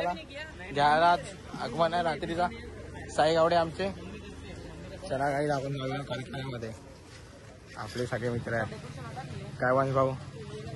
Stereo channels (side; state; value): both; identical; correlation 1.00